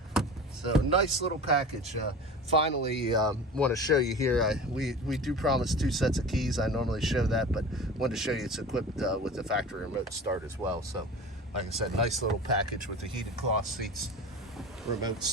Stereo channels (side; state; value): both; normal; correlation 0.35